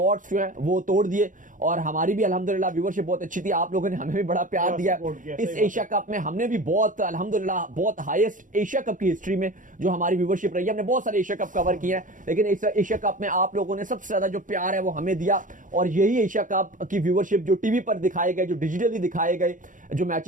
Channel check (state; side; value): late; left; 0.38 ms